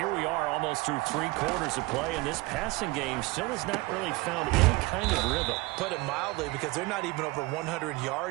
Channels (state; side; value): quieter; left; 23.1 dB